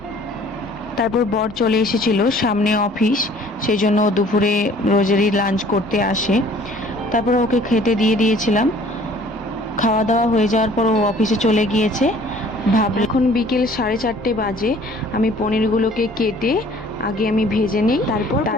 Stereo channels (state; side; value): normal; both; correlation 0.54